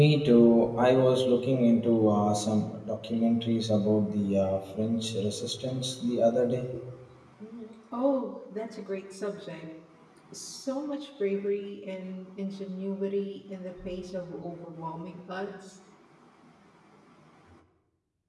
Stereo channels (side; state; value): both; identical; correlation 1.00